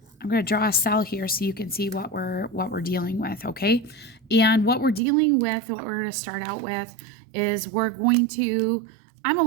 I'm going to draw a cell here so you can see what we're dealing with, okay? And what we're dealing with, what we're going to start out with is I'm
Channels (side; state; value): left; drops out; at 5.0 s